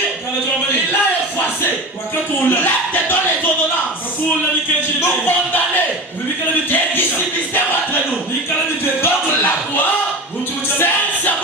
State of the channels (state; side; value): normal; both; correlation 0.29